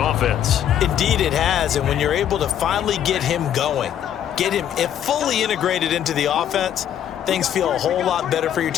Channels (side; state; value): right; quieter; 10.2 dB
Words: Indeed it has, and when you're able to finally get him going, get him fully integrated into the offense, things feel a whole lot better for your